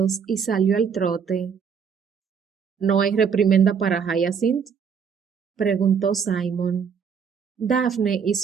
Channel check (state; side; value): quieter; left; 6.7 dB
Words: y salió al trote. ¿No hay reprimenda para Hyacinth? Preguntó Simon. Daphne